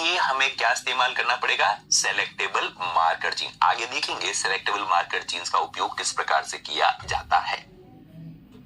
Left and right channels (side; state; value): both; identical; correlation 1.00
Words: हमें क्या इस्तेमाल करना पड़ेगा? Selectable marker gene. आगे देखेंगे सेलेक्टेबल मार्कर जीन्स का उपयोग किस प्रकार से किया जाता है।